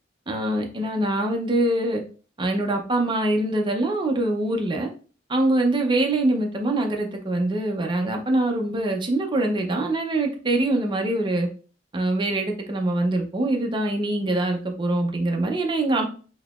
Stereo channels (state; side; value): normal; both; correlation 0.67